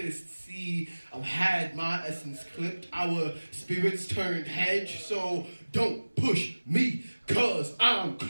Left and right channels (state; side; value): inverted; both; correlation -1.00